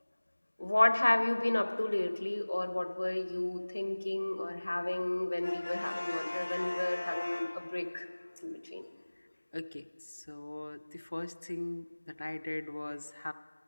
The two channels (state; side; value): inverted; both; correlation -1.00